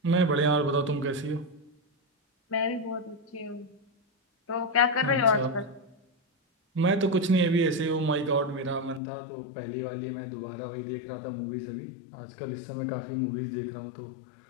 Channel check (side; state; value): right; drops out; at 9.0 s